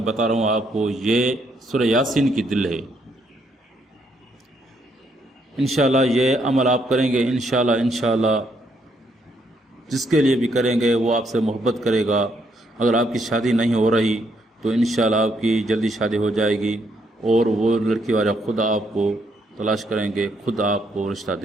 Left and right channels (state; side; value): normal; both; correlation 0.73